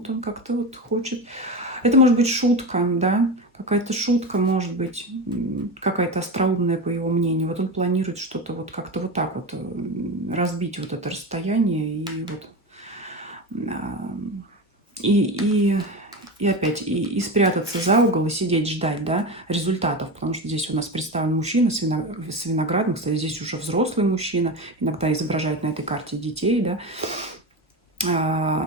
он как-то вот хочет... Это может быть шутка, да, какая-то шутка, может быть, какая-то остроумная, по его мнению. Вот он планирует что-то вот как-то вот так вот разбить вот это расстояние и вот... И опять, и спрятаться за угол, и сидеть ждать, да, результатов. Потому что здесь у нас представлен мужчина с виноградом. Кстати, здесь уже взрослый мужчина. Иногда изображают на этой карте детей, да.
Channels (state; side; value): normal; both; correlation 0.22